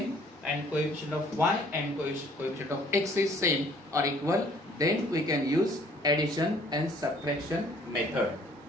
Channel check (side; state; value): both; normal; correlation 0.57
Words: and coefficient of y and coefficient of x is same or equal, then we can use addition and subtraction method.